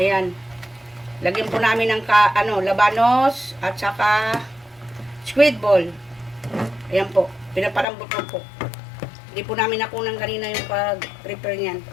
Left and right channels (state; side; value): drops out; right; at 7.9 s